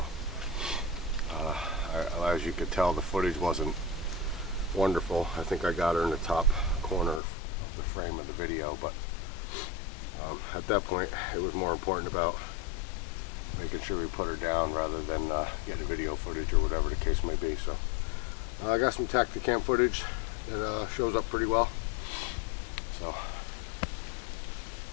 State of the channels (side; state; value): right; drops out; at 7.2 s